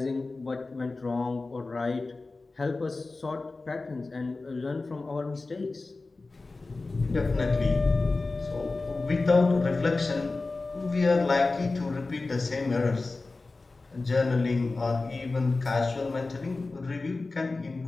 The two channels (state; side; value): quieter; right; 3.5 dB